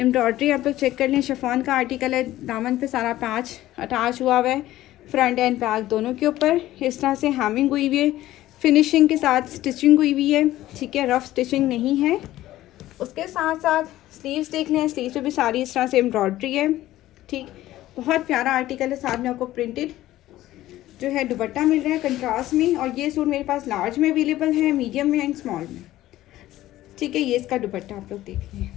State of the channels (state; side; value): quieter; right; 15.0 dB